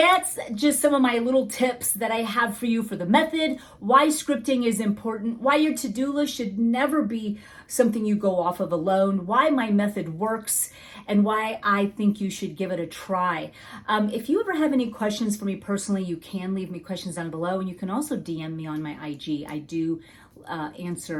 just some of my little tips that I have for you for the method, why scripting is important, why your to-do list should never be something you go off of alone, why my method works, and why I think you should give it a try. If you ever have any questions for me personally, you can leave me questions down below, and you can also DM me on my IG. I do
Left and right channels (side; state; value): both; identical; correlation 1.00